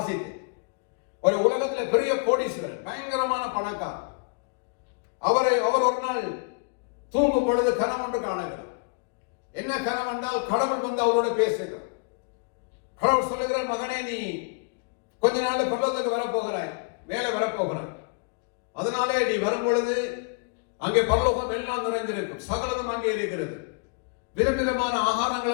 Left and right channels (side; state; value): right; quieter; 34.1 dB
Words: ஒரு உலகத்துல பெரிய கோடீஸ்வரன், பயங்கரமான பணக்காரர். அவர் ஒரு நாள் தூங்கும் பொழுது கனவு ஒன்று காணுகிறார். என்ன கனவு என்றால், கடவுள் வந்து அவரோட பேசுகிறார். கடவுள் சொல்லுகிறார், மகனே நீ கொஞ்ச நாள் பரலோகத்துக்கு வரப்போகிறாய், வேலை வரப்போகிறார். அதனாலே நீ வரும் பொழுது அங்கே பரலோகம் எல்லாம் நிறைந்திருக்கும், சகலமும் அங்கே இருக்கிறது, விதவிதமான ஆகாரங்கள்